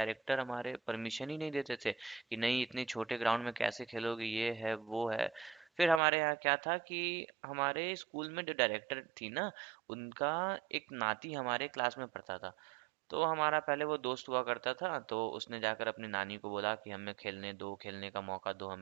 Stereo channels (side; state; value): left; drops out; at 6.0 s